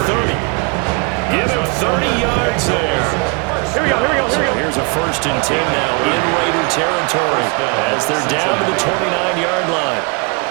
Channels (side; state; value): left; quieter; 32.7 dB